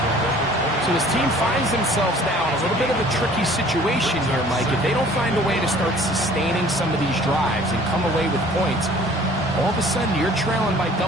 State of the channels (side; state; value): both; normal; correlation 0.52